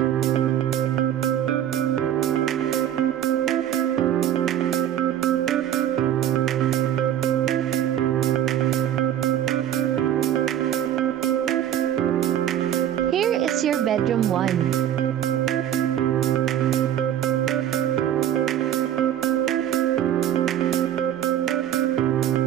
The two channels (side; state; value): left; quieter; 10.8 dB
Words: Here is your bedroom 1.